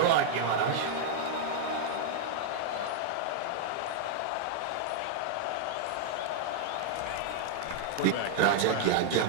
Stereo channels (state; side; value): different; both; correlation 0.00